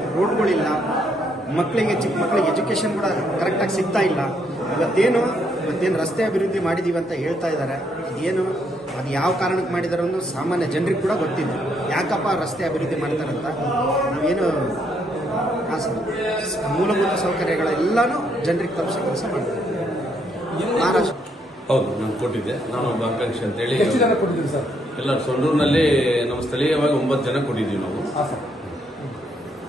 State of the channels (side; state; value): both; normal; correlation 0.73